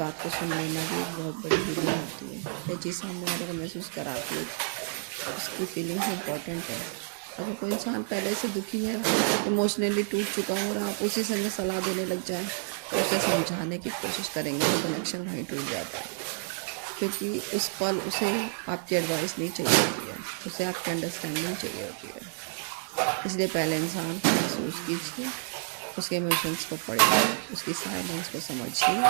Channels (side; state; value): left; silent; digital silence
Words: को सुन लेना भी एक बहुत बड़ी हीलिंग होती है। यह चीज़ सामने वाले को महसूस कराती है, उसकी फीलिंग्स इंपॉर्टेंट है। अगर कोई इंसान पहले से दुखी है, इमोशनली टूट चुका हो और आप उसी समय सलाह देने लग जाएं, तो उसे समझाने की कोशिश करेंगे तो कनेक्शन वहीं टूट जाता है, क्योंकि उस पल उसे आपकी एडवाइस नहीं चाहिए होती है, उसे आपकी अंडरस्टैंडिंग चाहिए होती है। इसलिए पहले इंसान को महसूस कीजिए, उसके इमोशंस को पढ़िए, उसकी साइलेंस को समझिए,